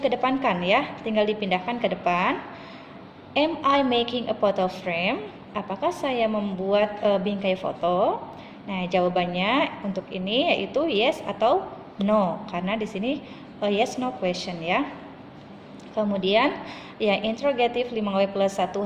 ya, tinggal dipindahkan ke depan. Am I making a photo frame? Apakah saya membuat bingkai foto? Nah, jawabannya untuk ini yaitu yes atau no, karena di sini yes no question ya. Kemudian yang interrogative 5W plus 1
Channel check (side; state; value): both; identical; correlation 1.00